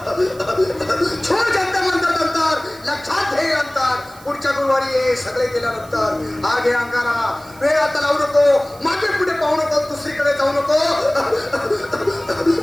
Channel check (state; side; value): noise; right; hiss, 23 dB below the sound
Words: छोड जनता म्हणतात अंतर, लक्षात घे अंतर. पुढच्या गुरुवारी ये, सगळे गेल्यानंतर. हा घे अंगारा, वेळ आता लावू नको, मागे पुढे पाहू नको, दुसरीकडे जाऊ नको.